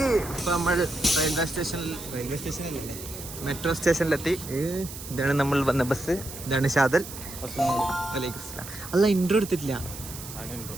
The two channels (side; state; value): right; noise; hiss, 12 dB below the sound